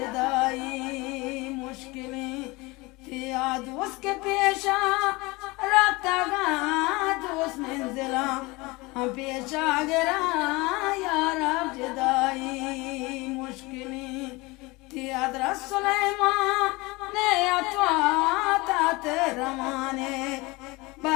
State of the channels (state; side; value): quieter; right; 23.6 dB